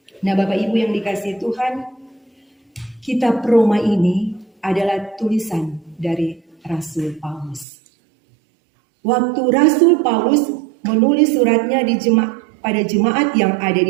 Nah, Bapak Ibu yang dikasihi Tuhan, kitab Roma ini adalah tulisan dari Rasul Paulus. Waktu Rasul Paulus menulis suratnya pada jemaat yang ada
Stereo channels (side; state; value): left; drops out; at 7.7 s